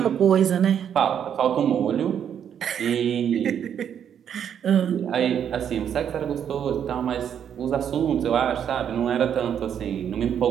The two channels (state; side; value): quieter; left; 8.7 dB